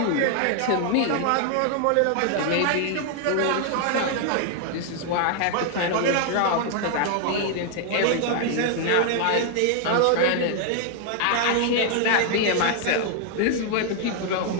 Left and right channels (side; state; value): both; different; correlation 0.00